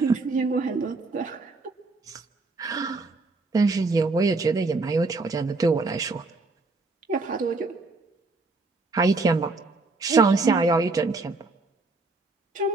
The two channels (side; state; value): left; quieter; 3.5 dB